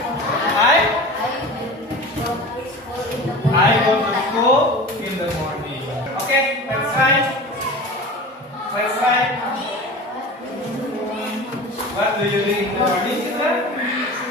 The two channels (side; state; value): both; normal; correlation 0.35